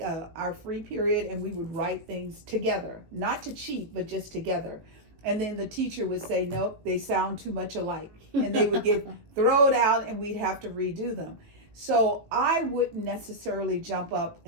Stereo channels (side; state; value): left; late; 18 ms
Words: our free period and we would write things together, not to cheat, but just together. And then the teacher would say, nope, they sound too much alike. And they would get thrown out and we'd have to redo them. So I wouldn't necessarily jump up